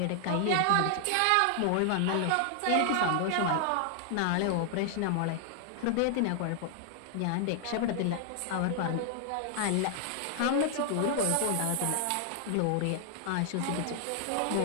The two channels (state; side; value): different; both; correlation 0.00